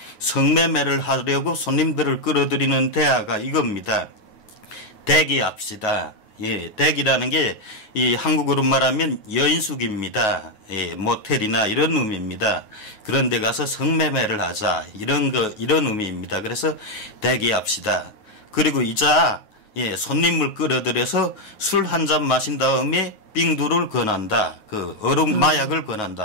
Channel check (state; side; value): late; right; 9.4 ms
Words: 성매매를 하려고 손님들을 끌어들이는 대화가 이겁니다. 대기합시다. 대기라는 게 이 한국어로 말하면 여인숙입니다. 모텔이나 이런 의미입니다. 그런 데 가서 성매매를 하자. 이런 의미입니다. 그래서 대기합시다. 그리고 이자 손님을 끌어들여서 술 한 잔 마신 다음에 빙두를 권한다. 그 얼음 마약을